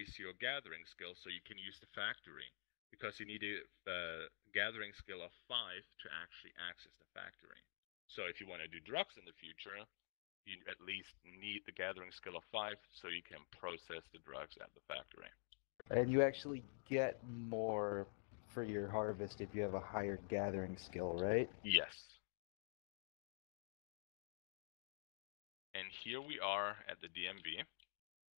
your gathering skill so you can use the factory. Because you need a gathering skill of 5 to actually access the factory. So if you want to do drugs in the future, you at least need the gathering skill of 5 so you can process the drugs at the factory. And you actually get more for your harvest if you have a higher gathering skill, right? Yes. And here we are at the DMV.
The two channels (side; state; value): right; silent; digital silence